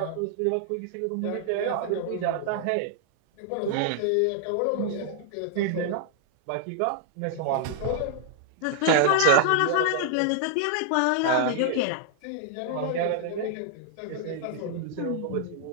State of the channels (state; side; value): different; both; correlation -0.01